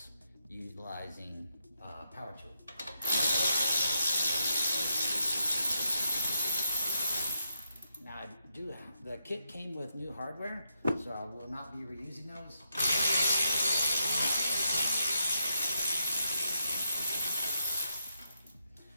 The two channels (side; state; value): both; inverted; correlation -0.83